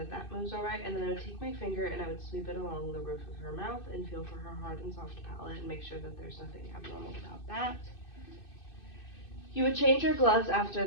that moves all right. And then I would take my finger and I would sweep it along the roof of her mouth and feel for her hard and soft palate and make sure that there's nothing abnormal about that. You would change your gloves after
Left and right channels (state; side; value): late; right; 2.6 ms